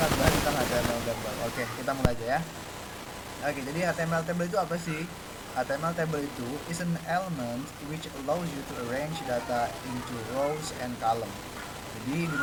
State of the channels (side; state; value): both; identical; correlation 1.00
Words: bahas tentang HTML table. Oke, kita mulai aja ya. Oke, jadi HTML table itu apa sih? HTML table itu is an element which allows you to arrange data into rows and column. Jadi di